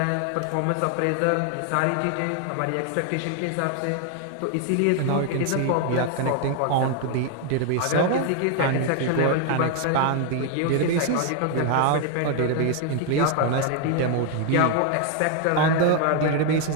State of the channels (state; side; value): different; both; correlation 0.00